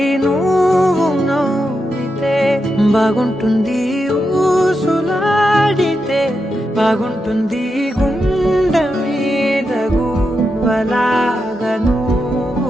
నువ్వు నవ్వితే బాగుంటుంది ఊసులాడితే బాగుంటుంది గుండె మీద గువ్వలాగా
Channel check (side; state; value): both; normal; correlation 0.86